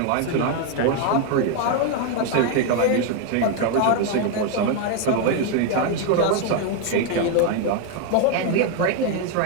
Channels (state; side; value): different; both; correlation 0.01